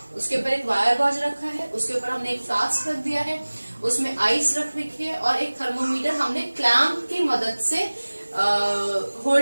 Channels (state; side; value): inverted; both; correlation -1.00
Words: उसके ऊपर एक वायर गॉज रखा है, उसके ऊपर हमने एक फ्लास्क रख दिया है, उसमें आइस रख रखी है, और एक थर्मोमीटर हमने क्लैंप की मदद से